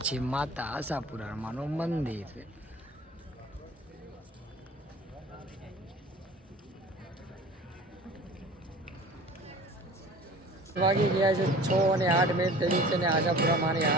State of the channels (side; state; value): both; normal; correlation 0.44